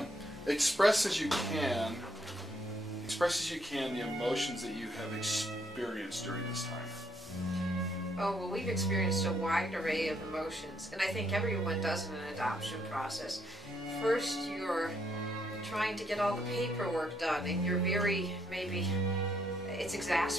Express as you can the emotions that you have experienced during this time. Oh, well, we've experienced a wide array of emotions, and I think everyone does in an adoption process. First, you're trying to get all the paperwork done, and you're it's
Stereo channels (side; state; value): both; normal; correlation 0.72